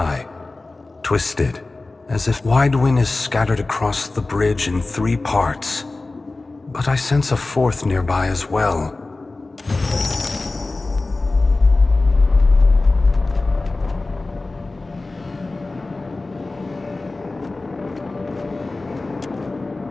Twisted, as if Widewin is scattered across the bridge in 3 parts. But I sense a 4th nearby as well.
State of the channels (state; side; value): quieter; right; 3.3 dB